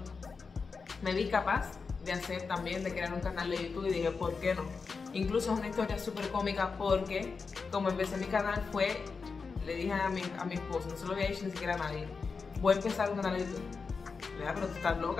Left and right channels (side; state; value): right; quieter; 4.9 dB